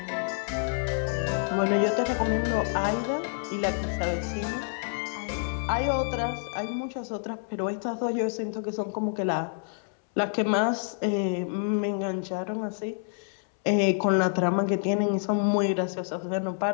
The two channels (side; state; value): right; silent; 59 dB below the other